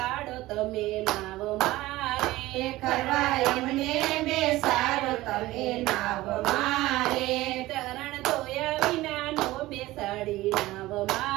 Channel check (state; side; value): quieter; left; 17.7 dB